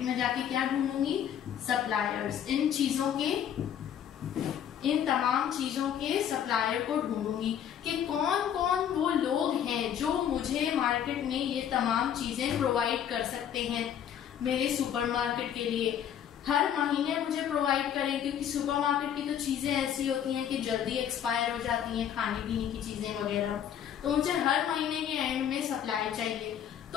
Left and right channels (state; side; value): quieter; right; 9.4 dB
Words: में जाके क्या ढूंढूंगी? सप्लायर्स। इन तमाम चीजों के सप्लायर को ढूंढूंगी कि कौन कौन वो लोग हैं जो मुझे मार्केट में ये तमाम चीजें प्रोवाइड कर सकते हैं मेरे सुपरमार्केट के लिए। हर महीने मुझे प्रोवाइड करें, क्योंकि सुपरमार्केट की तो चीजें ऐसी होती हैं कि जल्दी एक्सपायर हो जाती हैं, खाने पीने की चीजें वगैरह, तो मुझे हर महीने के एंड में सप्लाई चाहिए।